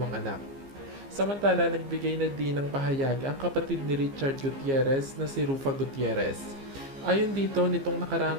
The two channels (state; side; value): late; left; 15 ms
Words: anak. Samantala, nagbigay na din ng pahayag ang kapatid ni Richard Gutierrez na si Rufa Gutierrez. Ayon dito, nitong